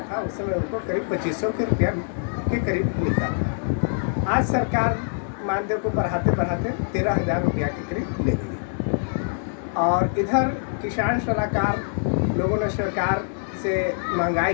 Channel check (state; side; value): silent; right; digital silence